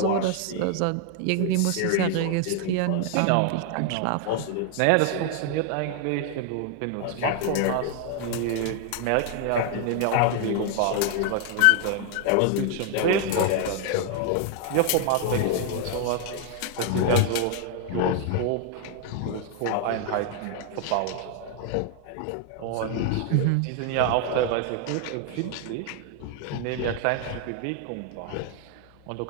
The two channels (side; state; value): both; different; correlation 0.00